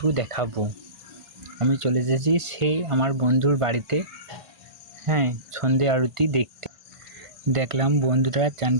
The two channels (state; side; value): late; left; 1.5 ms